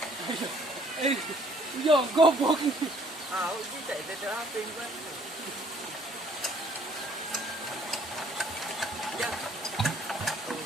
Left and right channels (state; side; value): normal; both; correlation 0.61